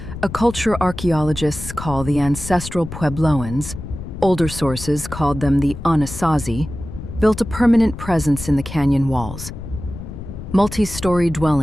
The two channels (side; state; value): left; noise; rumble, 10 dB below the sound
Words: a culture archaeologists call the ancestral Puebloans, older sources called them the Anasazi, built a permanent presence in the canyon walls. Multi-story